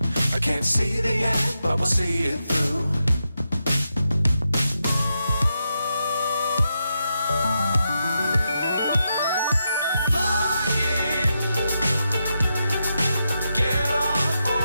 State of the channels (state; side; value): inverted; both; correlation -0.85